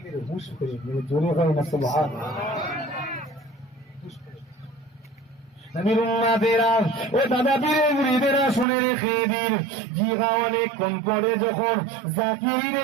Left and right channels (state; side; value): drops out; left; at 8.7 s